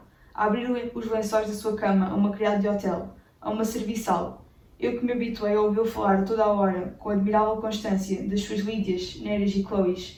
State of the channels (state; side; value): identical; both; correlation 1.00